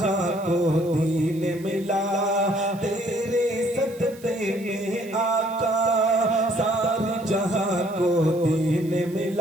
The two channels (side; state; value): right; noise; hiss, 23 dB below the sound